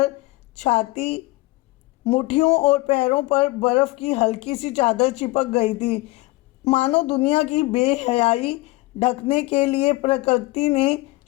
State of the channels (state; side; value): quieter; right; 21.0 dB